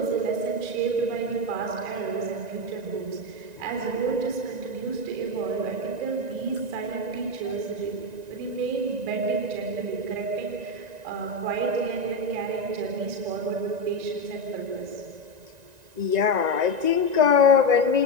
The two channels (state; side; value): late; left; 1.9 ms